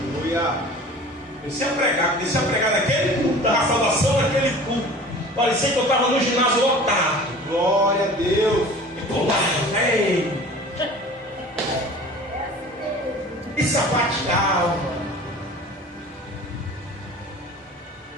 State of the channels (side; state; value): both; normal; correlation 0.42